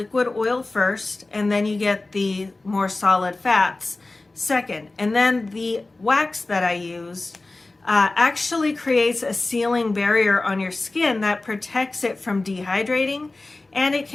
oil first, and then you get the more solid fats second. And then the wax that I use actually creates a sealing barrier on your skin that protects it from dehydrating, and it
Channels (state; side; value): quieter; right; 3.2 dB